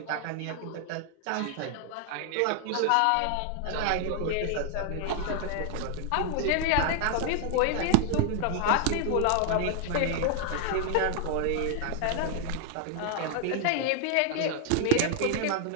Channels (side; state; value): both; different; correlation 0.00